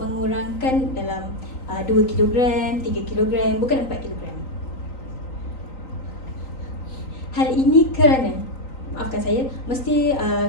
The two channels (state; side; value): late; right; 3.9 ms